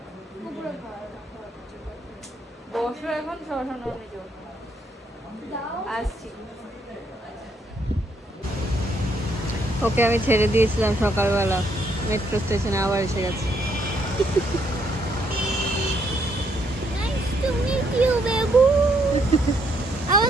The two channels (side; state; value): both; normal; correlation 0.72